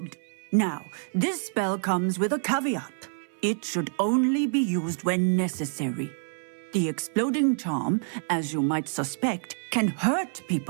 Now, this spell comes with a caveat. It should only be used when necessary. The exploding charm, as you might suspect, can hurt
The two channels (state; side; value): silent; left; 60 dB below the other